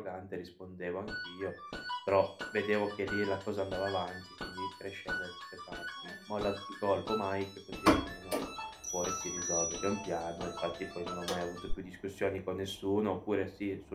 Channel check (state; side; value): identical; both; correlation 1.00